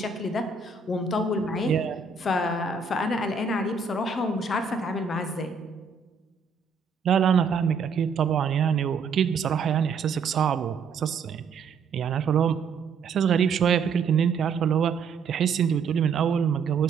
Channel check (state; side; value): quieter; left; 5.3 dB